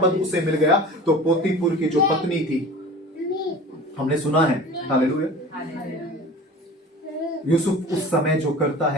उसे मिल गया, तो पोतीपुर की जो पत्नी थी, हमने सुना है, हालेलुया, यूसुफ उस समय जो करता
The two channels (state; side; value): normal; both; correlation 0.39